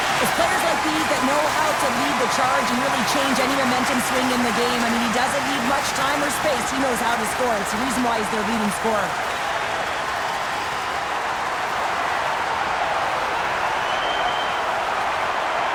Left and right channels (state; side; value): identical; both; correlation 1.00